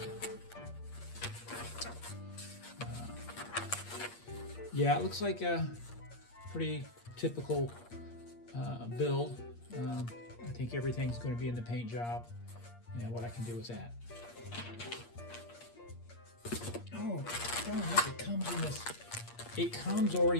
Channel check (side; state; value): right; late; 8.5 ms